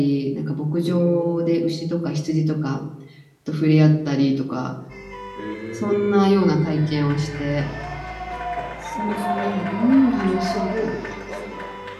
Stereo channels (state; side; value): identical; both; correlation 1.00